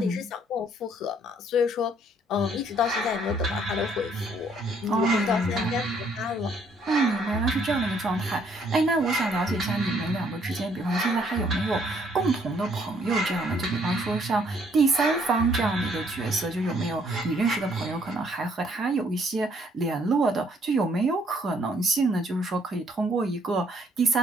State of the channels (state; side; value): normal; both; correlation 0.65